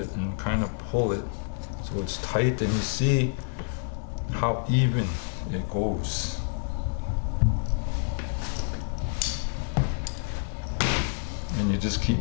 and kind of pull it so it's tight, and you see how even it goes. And you just keep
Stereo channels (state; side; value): silent; right; 59 dB below the other